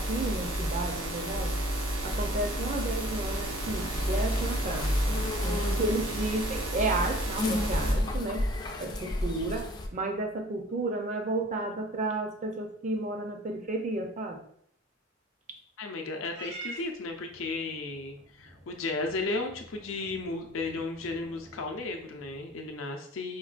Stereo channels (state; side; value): normal; both; correlation 0.49